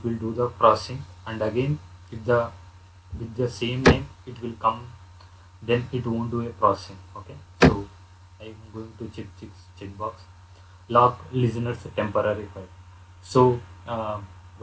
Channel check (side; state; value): both; identical; correlation 1.00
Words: will do the processing, and again if the with the same name it will come, then it won't do a processing. Okay. So I am going to check box lock listeners temporary file. So